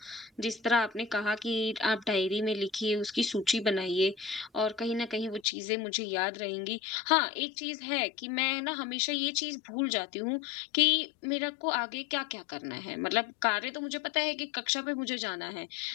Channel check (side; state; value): right; drops out; at 5.4 s